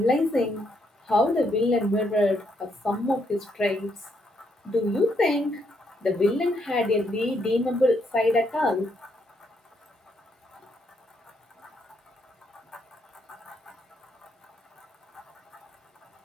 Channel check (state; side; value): normal; both; correlation 0.75